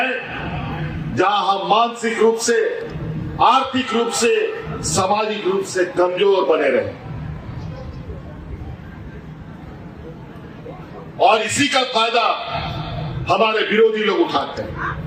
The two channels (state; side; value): identical; both; correlation 1.00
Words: जहां हम मानसिक रूप से, आर्थिक रूप से, सामाजिक रूप से कमजोर बने रहे। और इसी का फायदा हमारे विरोधी लोग उठाते हैं।